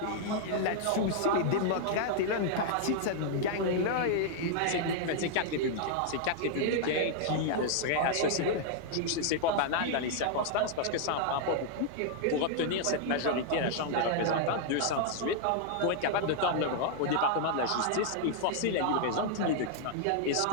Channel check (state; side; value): different; both; correlation -0.01